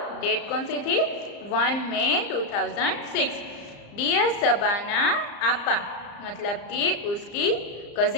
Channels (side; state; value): right; late; 34 ms